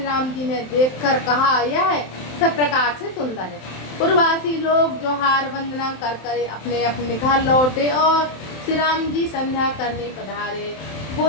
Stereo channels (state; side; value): late; right; 27 ms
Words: राम जी ने देखकर कहा, यह सब प्रकार से सुंदर है। पूर्ववासी लोग जोहार वंदना कर कर अपने अपने घर लौटे और श्री राम जी संध्या करने पधारे।